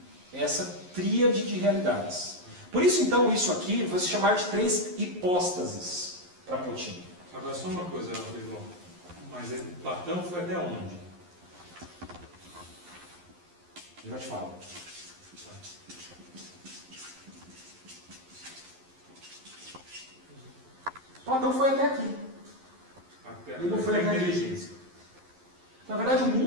É essa tríade de realidades. Por isso então, isso aqui vai se chamar de 3 hipóstases para Plotino. Agora só uma coisa, Rodrigo. Mas Platão foi até onde? Eu já te falo. Platão foi até aqui. Ele não foi até inteligência. Na verdade, o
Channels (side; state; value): left; late; 11 ms